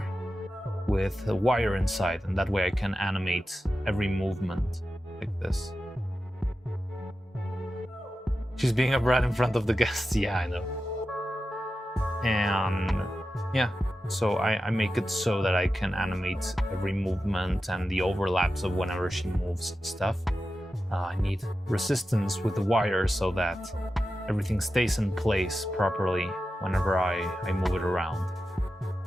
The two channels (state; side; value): normal; both; correlation 0.91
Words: with a wire inside, and that way I can animate every movement like this. She's being a brat in front of the guests. Yeah, I know. And yeah, so I make it so that I can animate every movement and the overlaps of whenever she moves stuff. I need resistance with the wire so that everything stays in place properly whenever I move it around.